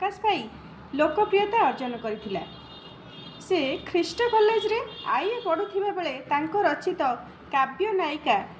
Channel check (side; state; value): both; identical; correlation 1.00